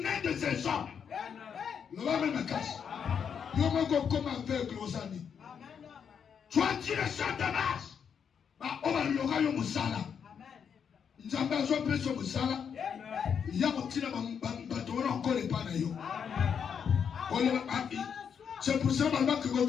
mains de ces hommes. Tu as direction de Damas. On va le musala. Nzambe azopesa musala. Ya kotina bato wana encore pas na yo. C'est pour ça que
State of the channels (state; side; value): quieter; right; 7.3 dB